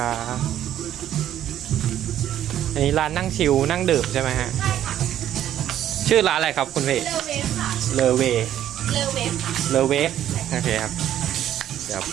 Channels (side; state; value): left; quieter; 11.4 dB